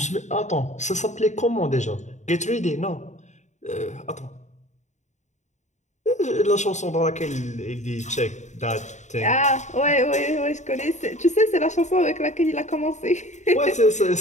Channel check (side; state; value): right; late; 0.34 ms